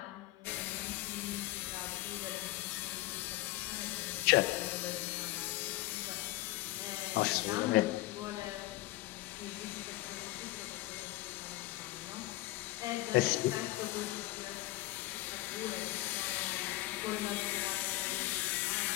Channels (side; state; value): right; quieter; 18.1 dB